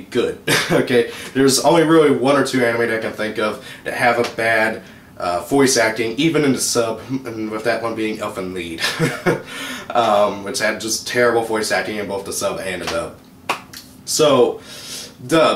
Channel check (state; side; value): identical; both; correlation 1.00